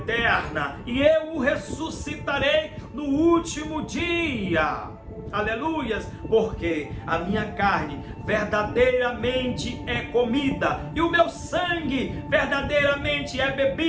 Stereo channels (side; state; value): both; identical; correlation 1.00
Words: e eu o ressuscitarei no último dia. Aleluias! Porque a minha carne verdadeiramente é comida e o meu sangue verdadeiramente é